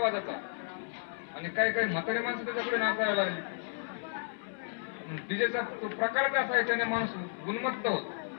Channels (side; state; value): right; silent; 56 dB below the other